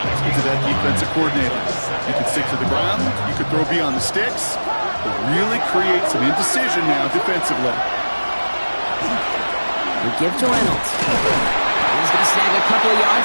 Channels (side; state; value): both; inverted; correlation -1.00